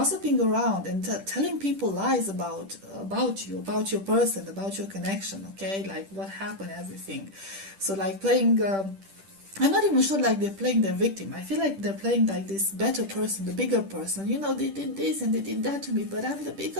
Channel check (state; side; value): late; left; 10 ms